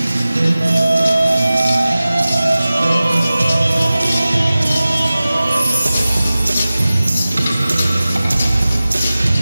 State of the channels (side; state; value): both; inverted; correlation -0.97